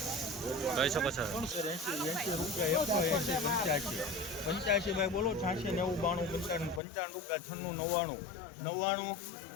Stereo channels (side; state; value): right; drops out; at 6.8 s